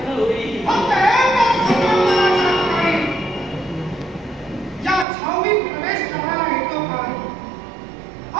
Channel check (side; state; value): left; drops out; at 5.1 s